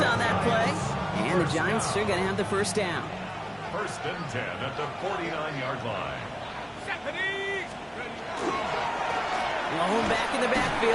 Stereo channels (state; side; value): identical; both; correlation 1.00